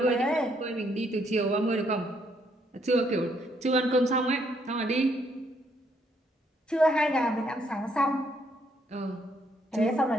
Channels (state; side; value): normal; both; correlation 0.71